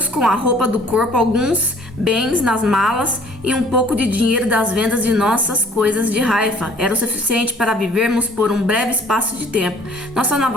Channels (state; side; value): normal; both; correlation 0.55